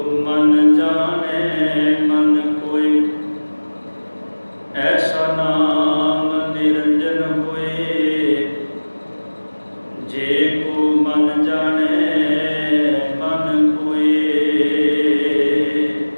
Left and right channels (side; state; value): both; inverted; correlation -1.00